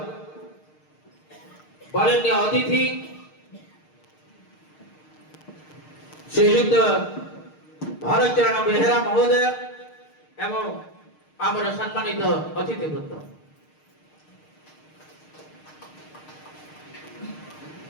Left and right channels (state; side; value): late; right; 6.5 ms